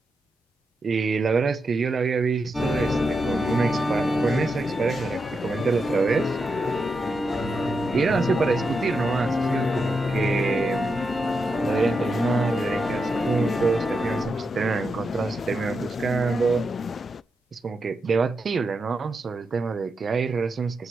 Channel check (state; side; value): normal; both; correlation 0.86